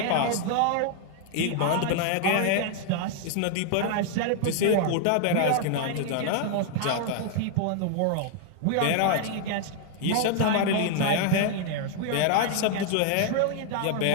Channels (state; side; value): different; both; correlation 0.00